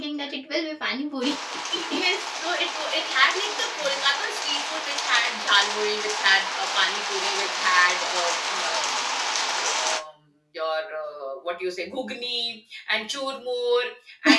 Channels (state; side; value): identical; both; correlation 1.00